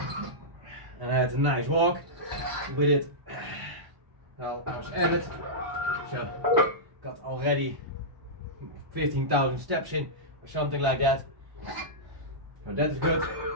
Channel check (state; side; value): late; left; 1.0 ms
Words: and I had a nice walk with it while I was at it. So got already 15,000 steps in or something like that. So that is good.